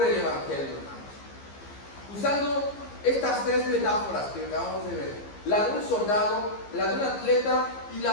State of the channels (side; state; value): right; late; 15 ms